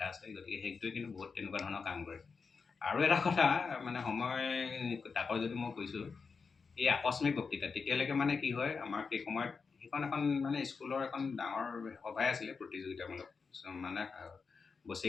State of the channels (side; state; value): right; quieter; 5.1 dB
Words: আছে। গতিকে সেইটোৱে কিন্তু বহুত তেনেকুৱা ধৰণৰ কাম কৰে। আৰু এটা কথা মানে সময় তাকৰ যদি মই কৈছোঁ, এই আকস্মিক বক্তৃতা তেতিয়ালৈকে মানে কি হয়, আমাৰ সেই সময়ত সেইখন এখন মানে স্কুলৰ এখন ডাঙৰ সভাই আছিলে, প্ৰতিযোগিতামূলক মানে